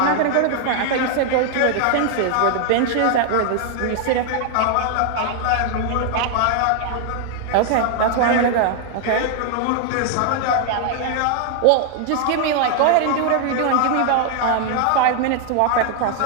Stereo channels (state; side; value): different; both; correlation 0.00